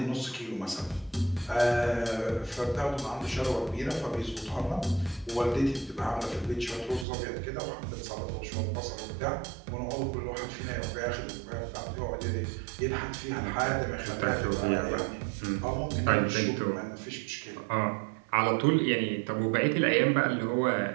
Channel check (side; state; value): left; drops out; at 7.1 s